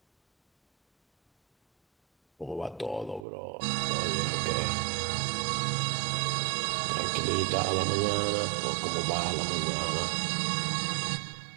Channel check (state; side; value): drops out; left; at 3.2 s